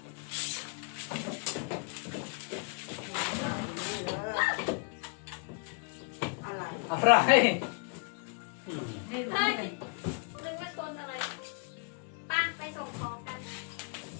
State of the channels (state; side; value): quieter; right; 37.8 dB